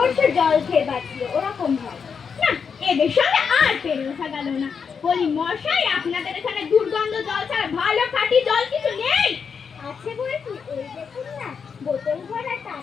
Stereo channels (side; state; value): right; quieter; 6.2 dB